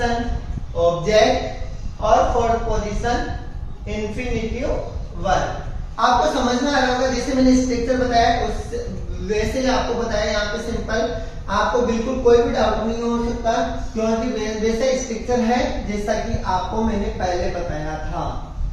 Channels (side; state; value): both; identical; correlation 1.00